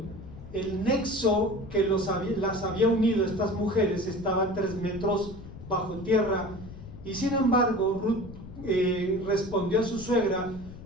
el nexo que las había unido a estas mujeres estaba a 3 metros bajo tierra, y sin embargo Ruth respondió a su suegra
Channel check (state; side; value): noise; left; rumble, 14 dB below the sound